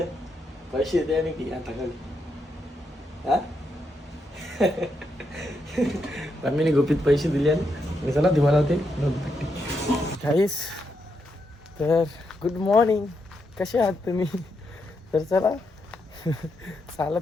पैसे द्या की आता खाली. हा मम्मीने गुपित पैसे दिले आणि चला दिवा लावते. गाईस, तर गुड मॉर्निंग, कसे आहात तुम्ही? तर चला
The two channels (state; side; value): normal; both; correlation 0.82